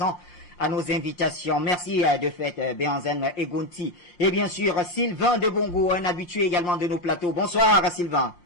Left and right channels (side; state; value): right; late; 5.7 ms